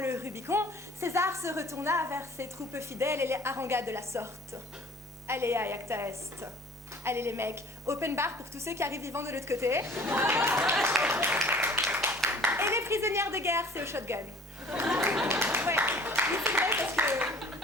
Rubicon, César se retourna vers ses troupes fidèles et les harangua de la sorte. Allez à Iacta Est. Allez les mecs, open bar pour tous ceux qui arrivent vivants de l'autre côté. Et les prisonnières de guerre, c'est au shotgun. Ouais, oui, c'est vrai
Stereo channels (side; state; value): both; normal; correlation 0.50